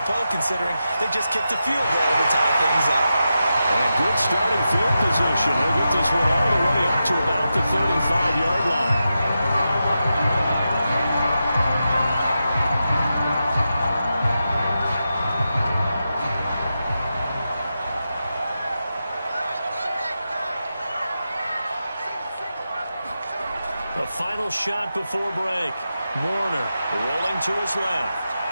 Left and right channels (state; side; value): inverted; both; correlation -0.89